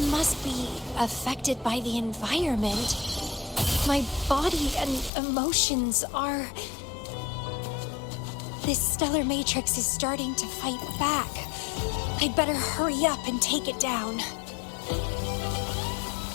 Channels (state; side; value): drops out; right; at 5.1 s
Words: must be affected by the environment. My body and emotions are... This stellar matrix is starting to fight back. I'd better hurry up and take it down.